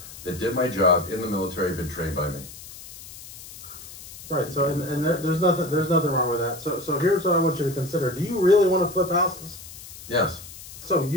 that did my job in the military had been trained by me. Right. So and there's nothing wrong with that. So here's what I want you to consider. Do you really want to flip houses? Yes. So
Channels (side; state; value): left; noise; hiss, 15 dB below the sound